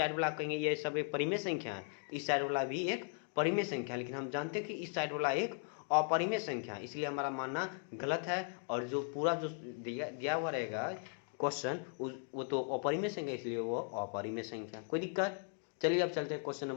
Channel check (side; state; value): right; silent; 53 dB below the other